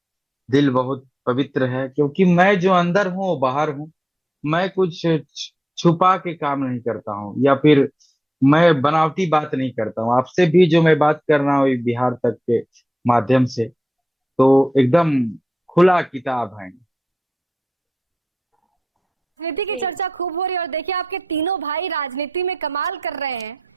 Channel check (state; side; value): normal; both; correlation 0.90